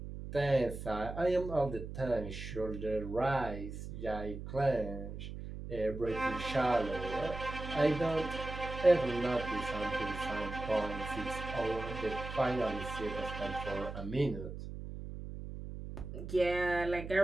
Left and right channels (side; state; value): right; noise; hum, 8 dB below the sound